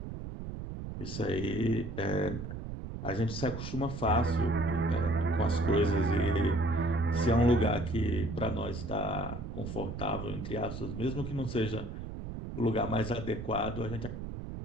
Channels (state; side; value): noise; right; rumble, 7 dB below the sound